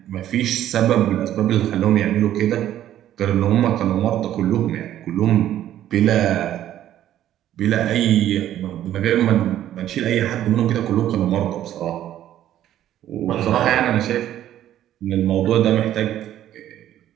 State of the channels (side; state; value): left; quieter; 12.0 dB